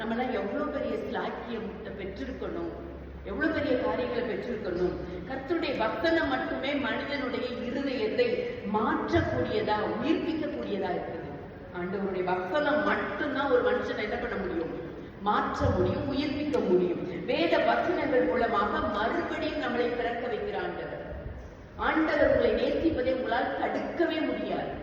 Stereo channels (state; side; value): identical; both; correlation 1.00